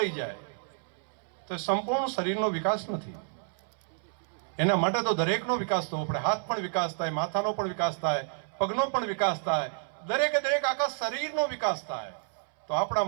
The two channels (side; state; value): left; silent; 58 dB below the other